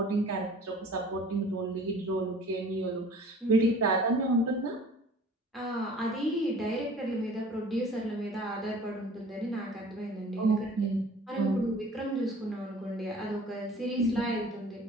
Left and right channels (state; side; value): normal; both; correlation 0.47